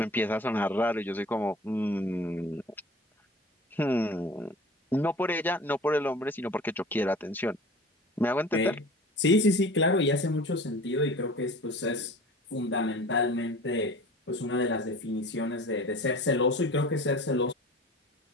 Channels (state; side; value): normal; both; correlation 0.41